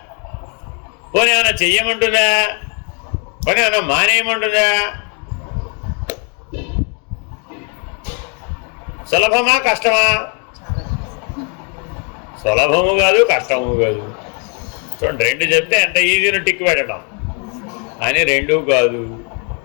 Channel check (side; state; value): right; quieter; 38.5 dB